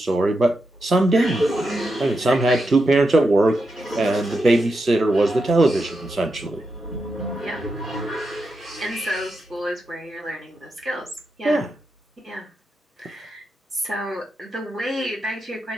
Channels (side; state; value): both; normal; correlation 0.86